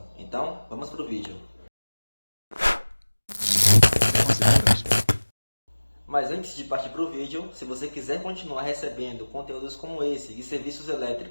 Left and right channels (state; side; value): inverted; both; correlation -1.00